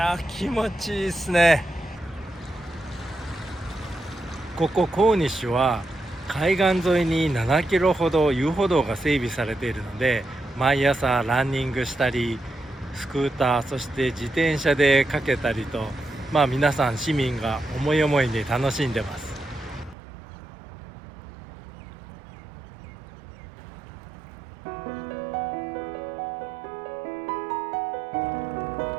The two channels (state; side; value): drops out; left; at 20.0 s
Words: 気持ちいいですね。ここコーニッシュは海岸沿いに7キロほど遊歩道が整備されているので、毎朝ランニングしたりスクーター、そして自転車でかけたりと、皆さん市民が思い思いに楽しんでます。